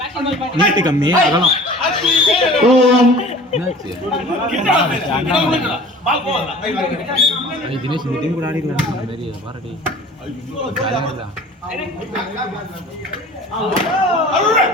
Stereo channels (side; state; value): both; normal; correlation 0.44